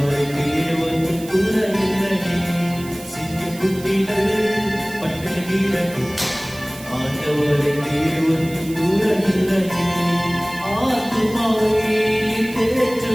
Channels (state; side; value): noise; right; hiss, 17 dB below the sound